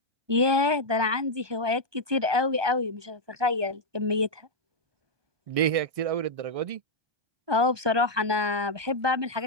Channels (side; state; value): left; late; 1.2 ms